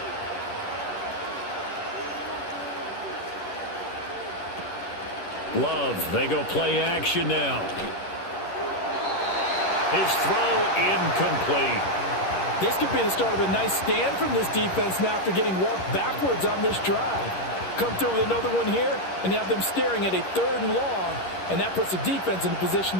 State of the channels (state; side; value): late; right; 10 ms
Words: Love, they go play action now. His throw incomplete. This could be the start of a nice stand from this defense now after getting walked backwards on this drive. Come through with another one here, and you have them staring at a 3rd and long, and that puts the defense in a position